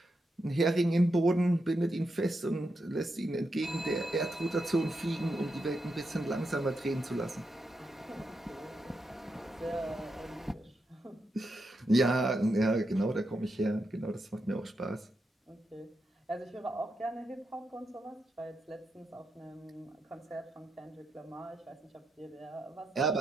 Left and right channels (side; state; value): both; normal; correlation 0.85